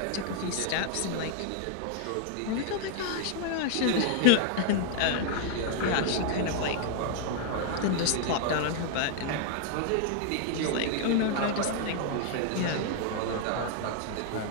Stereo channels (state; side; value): different; both; correlation -0.01